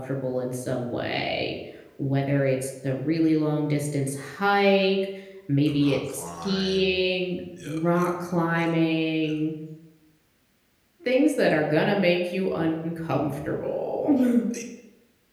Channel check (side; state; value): both; identical; correlation 1.00